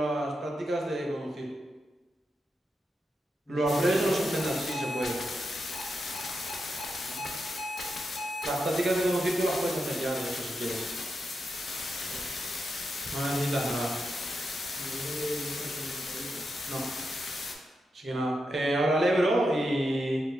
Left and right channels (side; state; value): both; normal; correlation 0.86